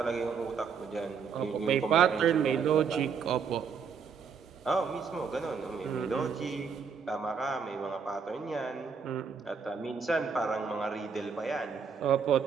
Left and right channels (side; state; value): left; quieter; 6.1 dB